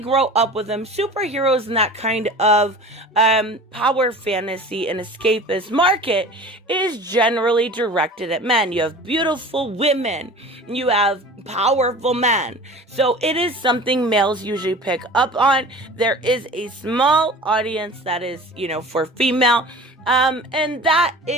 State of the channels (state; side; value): normal; both; correlation 0.39